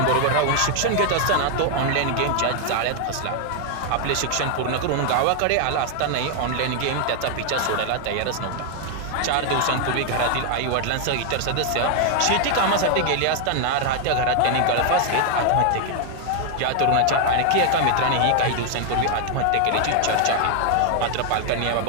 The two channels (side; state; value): both; different; correlation 0.00